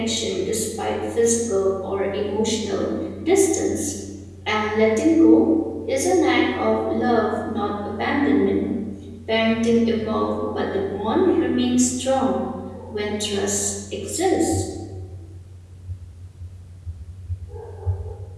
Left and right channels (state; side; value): identical; both; correlation 1.00